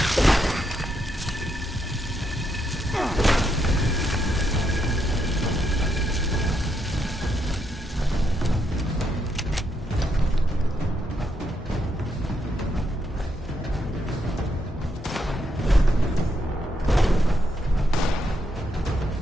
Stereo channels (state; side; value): normal; both; correlation 0.78